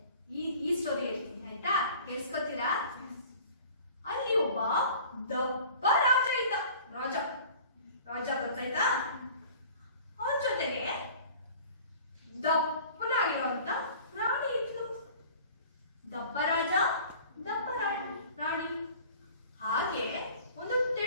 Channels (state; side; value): inverted; both; correlation -0.46